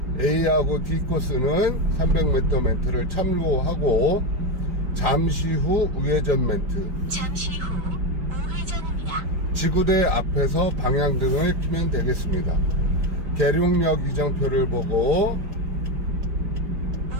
A하고 D 코스는 300m 멘트를 참고하고 잠시 후 우회전 멘트. 잠시 후 우회전입니다. 지구대 앞에서 방향등을 켜면 되겠습니다. 계룡역 이정표를 보고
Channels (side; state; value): left; late; 5.1 ms